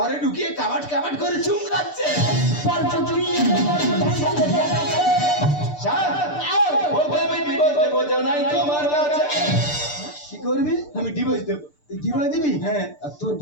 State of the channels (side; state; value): right; late; 6.8 ms